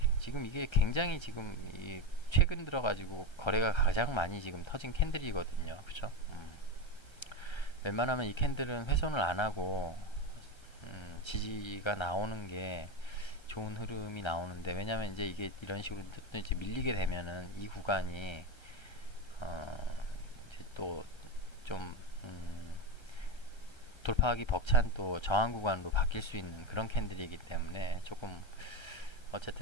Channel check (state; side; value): late; right; 1.3 ms